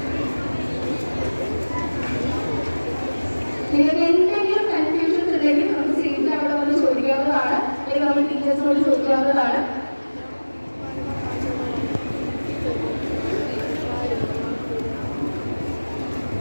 നിങ്ങൾക്ക് എന്തെങ്കിലും കൺഫ്യൂഷൻസ് ഉണ്ടെങ്കിൽ നമുക്ക് സീറ്റിൽ അവിടെ വന്ന് ചോദിക്കാവുന്നതാണ്, അല്ലെങ്കിൽ നമ്മൾ ടീച്ചേഴ്സിനോട് ചോദിക്കാവുന്നതാണ്.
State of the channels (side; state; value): both; inverted; correlation -1.00